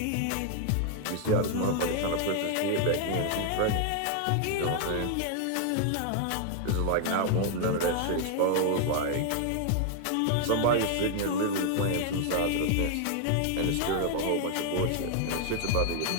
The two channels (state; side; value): different; both; correlation 0.00